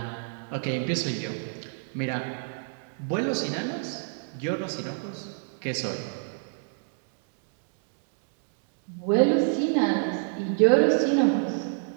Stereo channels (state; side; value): silent; left; digital silence